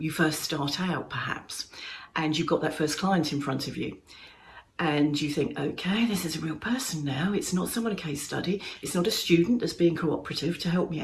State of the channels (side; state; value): both; identical; correlation 1.00